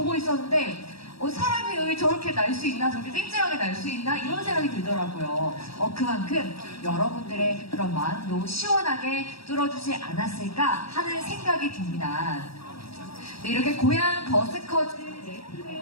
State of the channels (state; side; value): late; right; 0.76 ms